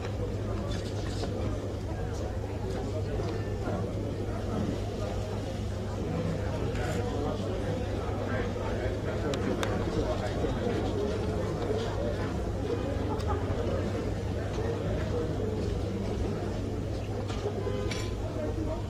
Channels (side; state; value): both; identical; correlation 1.00